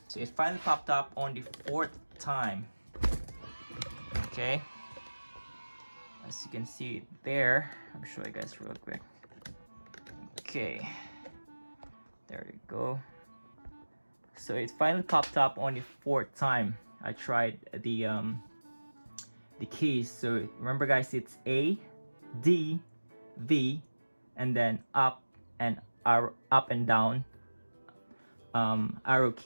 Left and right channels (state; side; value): inverted; both; correlation -1.00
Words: So it finally popped up on the 4th time. Okay, as you can see there, I'll show you guys real quick. Okay, there you go. So it finally popped up on the 4th time I tried the keys. So remember guys, it's A, D, V, and then up and down arrow